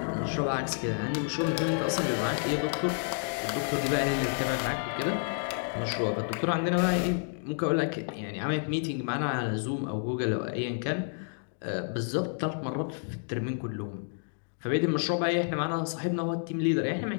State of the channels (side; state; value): right; silent; digital silence